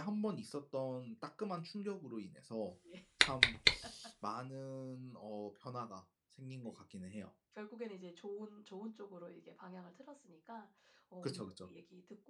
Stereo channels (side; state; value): both; identical; correlation 1.00